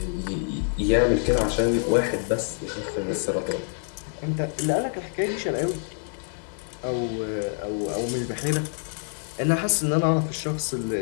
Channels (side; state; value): right; silent; 57 dB below the other